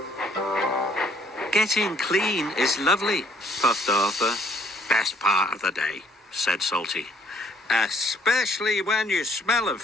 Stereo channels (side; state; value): both; normal; correlation 0.63